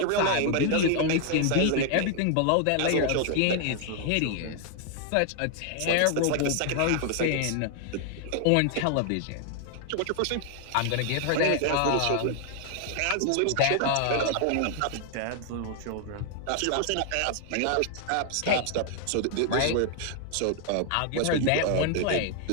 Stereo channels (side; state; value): both; different; correlation 0.00